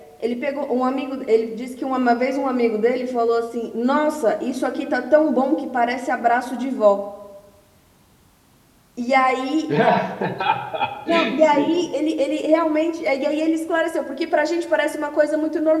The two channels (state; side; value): identical; both; correlation 1.00